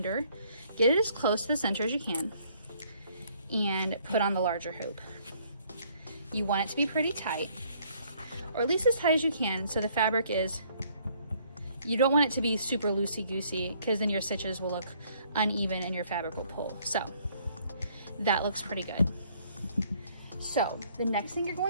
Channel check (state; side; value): inverted; both; correlation -0.63